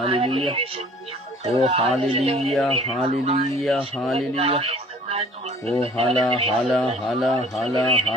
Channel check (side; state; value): both; normal; correlation 0.52